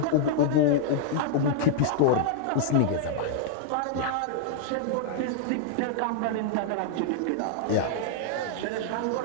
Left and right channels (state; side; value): different; both; correlation -0.01